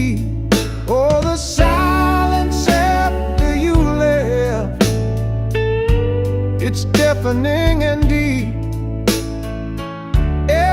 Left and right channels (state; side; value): identical; both; correlation 1.00